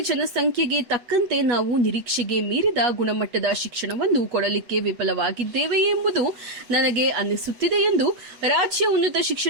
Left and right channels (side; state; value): left; late; 8.2 ms